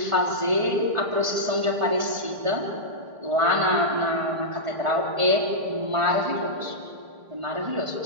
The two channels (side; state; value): left; late; 1.5 ms